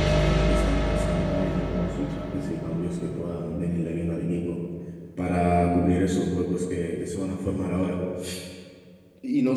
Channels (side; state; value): both; identical; correlation 1.00